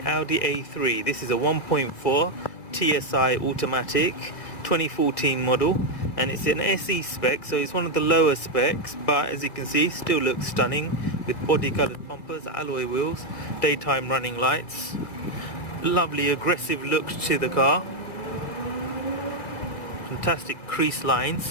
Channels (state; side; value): late; right; 1.8 ms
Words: Audi A3. This is a 1.4 TSI automatic 2014 model, and it's an SE spec, so it's one of the lower specs, but as you can see still looks stunning with body coloured bumpers, alloy wheels, daytime running lights, lovely aggressive look to the car, fantastic crease